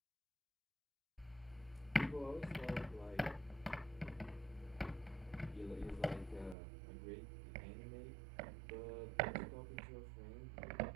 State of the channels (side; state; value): left; drops out; at 6.6 s